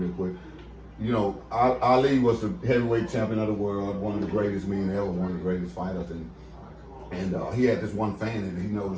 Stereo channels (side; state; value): both; identical; correlation 1.00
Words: quick. You know, Ali was the heavyweight champion of the world, one of the greatest men ever, one of the greatest fighters, and he had this one fan that he